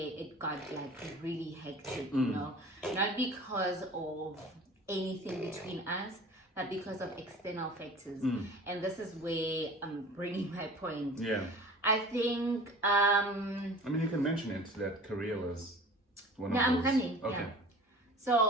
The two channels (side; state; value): both; normal; correlation 0.42